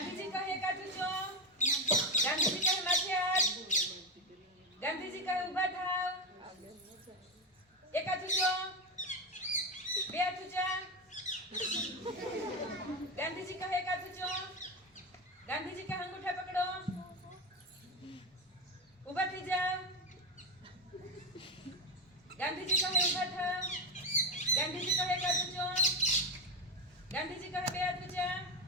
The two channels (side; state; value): both; normal; correlation 0.13